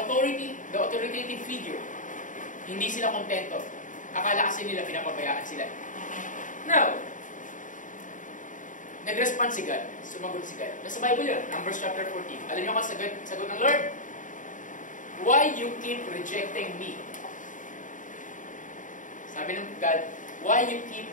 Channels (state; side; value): late; right; 0.37 ms